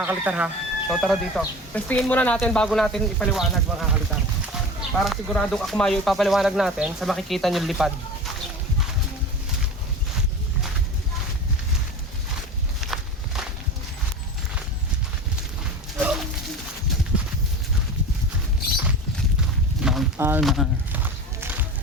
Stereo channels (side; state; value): both; normal; correlation 0.32